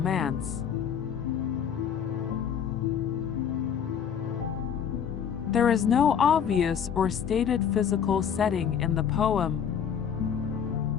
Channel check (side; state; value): right; quieter; 7.9 dB